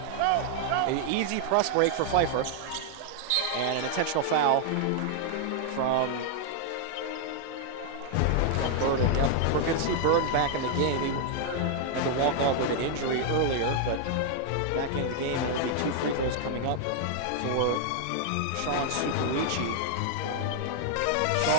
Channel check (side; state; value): both; different; correlation 0.00